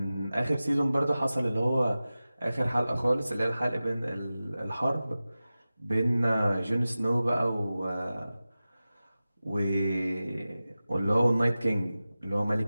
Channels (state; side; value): inverted; both; correlation -0.96